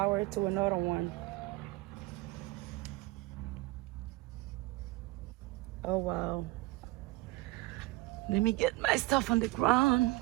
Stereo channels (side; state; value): left; quieter; 20.6 dB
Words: to another one. Oh wow. Let me get my stuff on the ground.